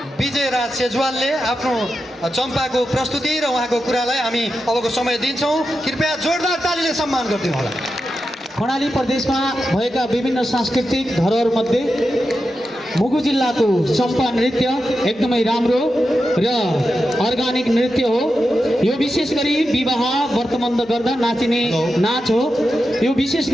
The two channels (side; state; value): both; normal; correlation 0.89